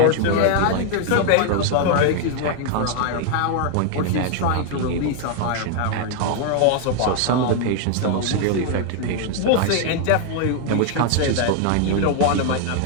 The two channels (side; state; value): both; different; correlation 0.00